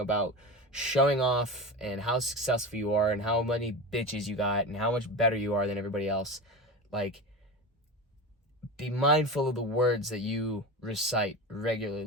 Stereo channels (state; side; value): normal; both; correlation 0.26